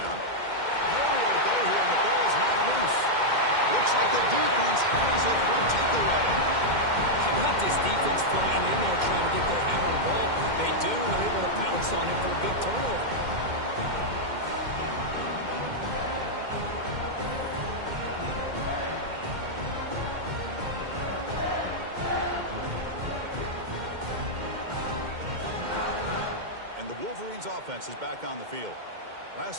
Nowhere to go here, and the ball is not loose. Looks like the defense has it for a takeaway. How about this defense flying in there trying to get their hand on the ball? They do, and they're able to pounce on it for a big turnover. And the Wolverines offense is back on the field.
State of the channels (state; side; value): late; left; 2.1 ms